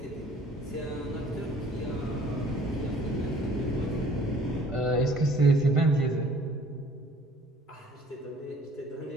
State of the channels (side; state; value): both; normal; correlation 0.55